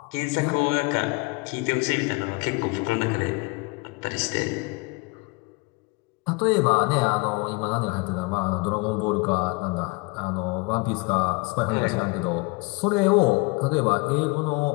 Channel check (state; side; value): quieter; right; 27.7 dB